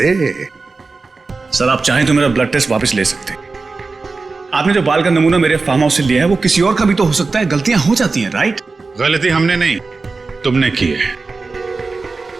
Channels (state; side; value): quieter; left; 4.0 dB